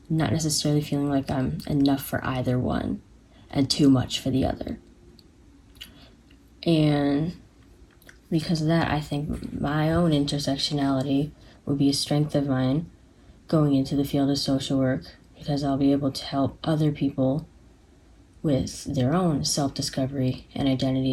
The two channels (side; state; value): both; identical; correlation 1.00